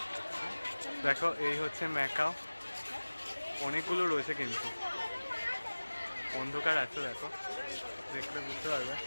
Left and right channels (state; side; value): inverted; both; correlation -1.00